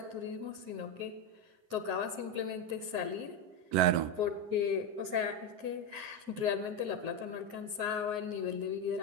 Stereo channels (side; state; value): left; late; 9.5 ms